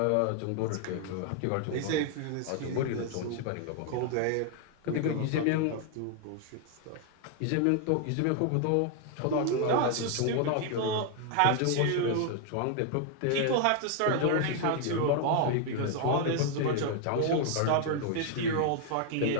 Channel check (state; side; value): different; both; correlation 0.00